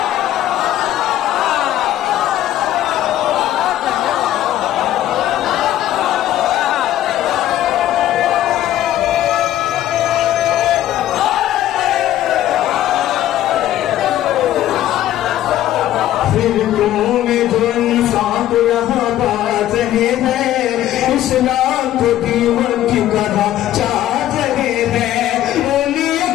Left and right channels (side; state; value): right; quieter; 13.0 dB